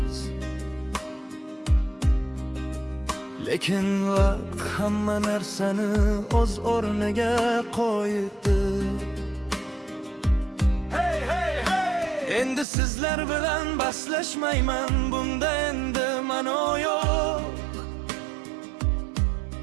lekin vaqt hamma narsani o'z o'rniga qo'ydi. Endi sizlar bilan baslashmayman, bunda endi ma'no yo'q.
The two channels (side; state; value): left; drops out; at 12.7 s